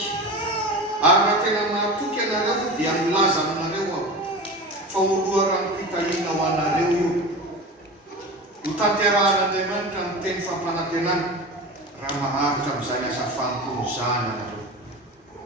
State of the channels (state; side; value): normal; both; correlation 0.30